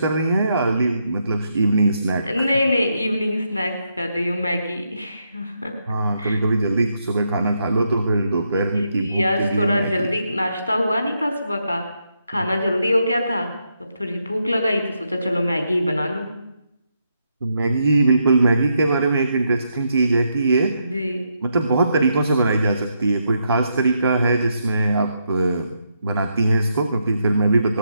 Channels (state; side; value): inverted; both; correlation -0.80